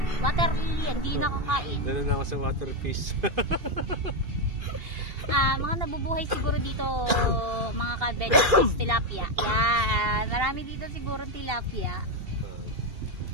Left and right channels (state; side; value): late; left; 2.7 ms